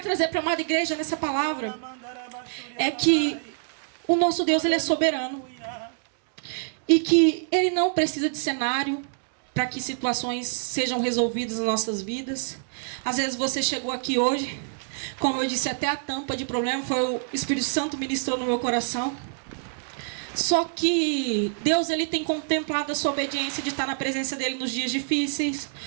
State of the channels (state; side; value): silent; left; digital silence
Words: trazer para a amada igreja nessa palavra, é que o nosso Deus, ele é soberano. E que ele não precisa de cenário para que situações sejam resolvidas nas nossas vidas. Às vezes você chegou aqui hoje, como eu disse, até a tampa de problema foi o Espírito Santo ministrou no meu coração. Só que Deus, ele tem contemplado a sua obediência de estar na presença dele nos dias difíceis,